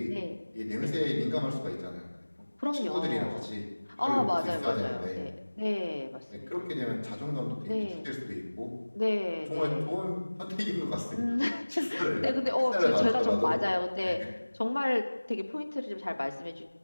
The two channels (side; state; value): both; inverted; correlation -1.00